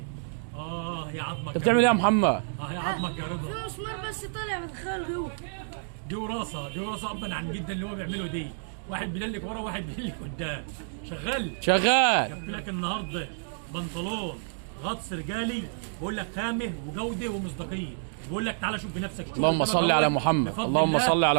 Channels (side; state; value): left; silent; digital silence